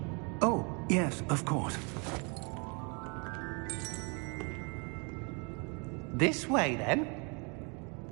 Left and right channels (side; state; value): left; quieter; 33.9 dB